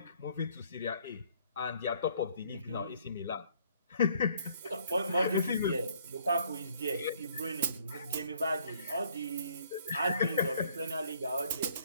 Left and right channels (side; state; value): both; inverted; correlation -0.62